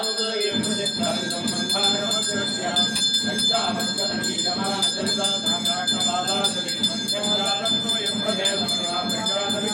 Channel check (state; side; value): identical; both; correlation 1.00